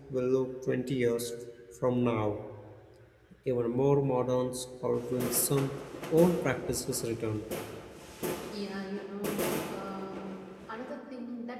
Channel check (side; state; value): both; identical; correlation 1.00